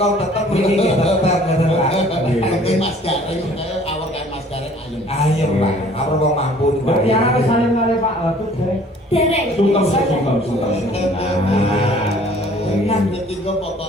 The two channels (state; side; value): normal; both; correlation 0.54